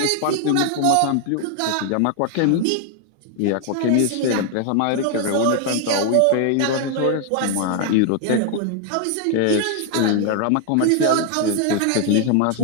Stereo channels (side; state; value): both; different; correlation 0.00